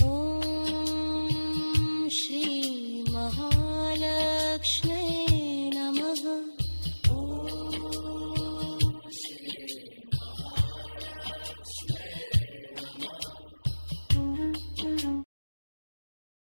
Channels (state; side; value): inverted; both; correlation -1.00